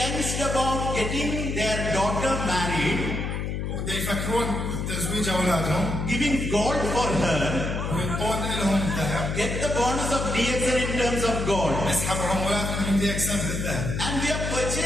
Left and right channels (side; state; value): left; noise; hum, 3 dB below the sound